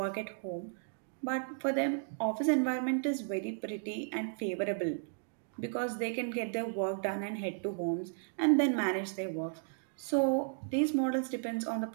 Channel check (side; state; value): left; silent; digital silence